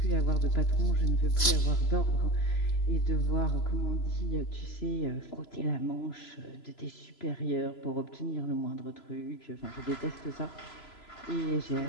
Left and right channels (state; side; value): late; right; 3.0 ms